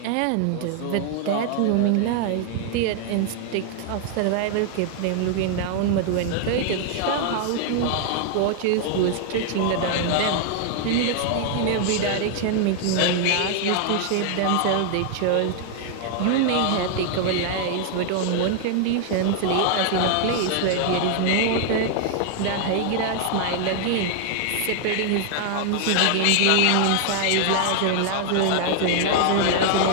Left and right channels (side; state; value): both; different; correlation 0.00